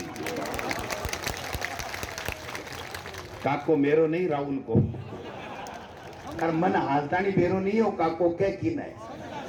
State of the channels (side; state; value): both; identical; correlation 1.00